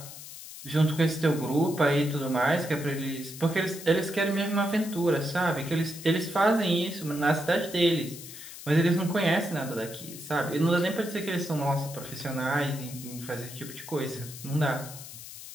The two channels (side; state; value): left; noise; hiss, 13 dB below the sound